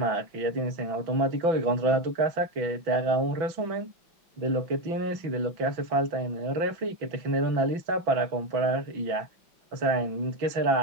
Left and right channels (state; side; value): late; left; 6.0 ms